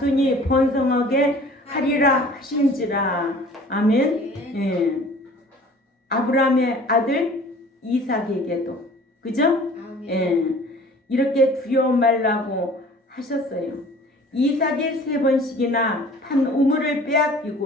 번성하게 하리라 하신지라. 아멘. 예. 아브라함의 아들 이삭에게도 그죠? 예. 이렇게 두려워 말라고 하셨어요. 이삭이 3번씩이나 판 우물을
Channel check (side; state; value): both; normal; correlation 0.48